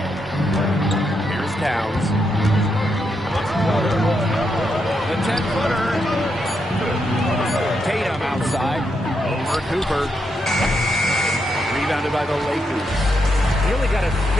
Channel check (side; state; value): both; normal; correlation 0.81